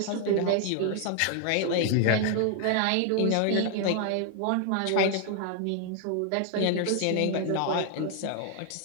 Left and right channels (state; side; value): different; both; correlation 0.00